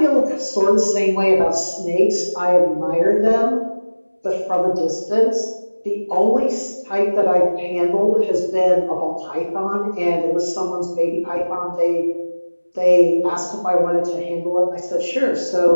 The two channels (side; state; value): both; inverted; correlation -1.00